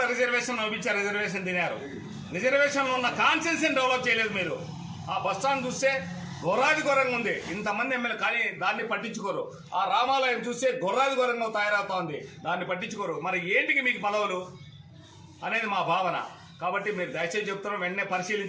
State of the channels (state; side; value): identical; both; correlation 1.00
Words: రిజర్వేషన్ ఇచ్చారు, రిజర్వేషన్ తినారు. రిజర్వేషన్లో ఉన్న కాన్సెన్స్ని డెవలప్ చేయలేదు మీరు. ఆ బస్టాండ్ చూస్తే ఘోరాది ఘోరంగా ఉంది, ఇంతమంది ఎమ్మెల్యే కానీ దాన్ని పట్టించుకోరు. ఆ రామాలయం చూస్తే ఘోరాది ఘోరంగా తయారవుతా ఉంది, దాన్ని పట్టించుకోరు. మరి ఏంటికి మీకు పదవులు అనేది మా భావన. కాబట్టి మీరు దయచేసి చెప్తున్నాం, వెంటనే